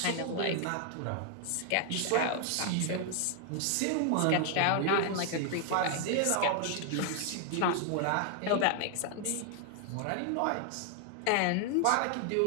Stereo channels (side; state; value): both; different; correlation 0.00